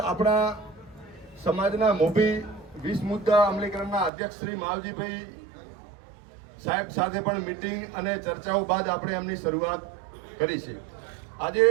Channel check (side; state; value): left; drops out; at 4.1 s